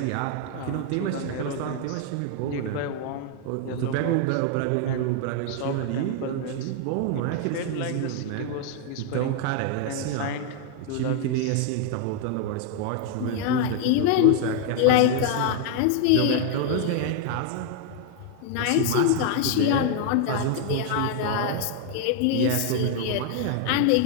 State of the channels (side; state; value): both; different; correlation 0.00